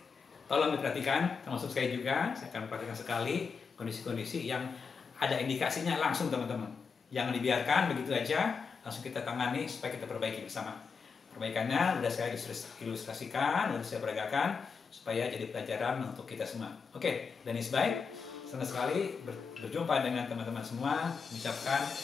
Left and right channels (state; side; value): quieter; right; 5.5 dB